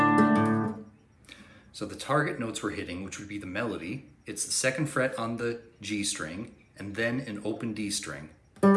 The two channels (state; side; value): identical; both; correlation 1.00